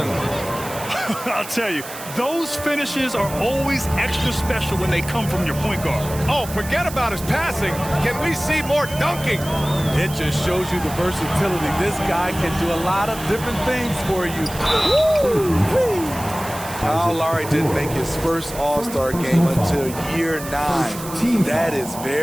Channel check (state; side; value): noise; right; hiss, 13 dB below the sound